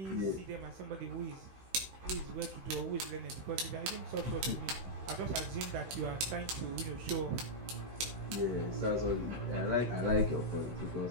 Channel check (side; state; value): left; late; 16 ms